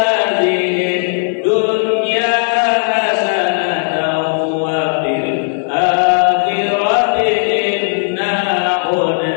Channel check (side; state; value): right; silent; digital silence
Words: dunya hasanatan wa fil akhirati inna